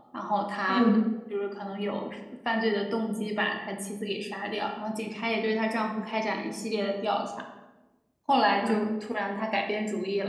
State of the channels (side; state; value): both; identical; correlation 1.00